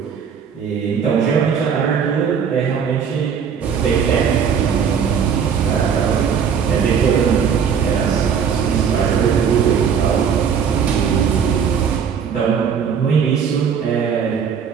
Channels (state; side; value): quieter; left; 7.1 dB